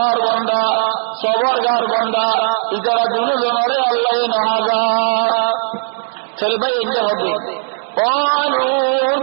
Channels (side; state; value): left; silent; digital silence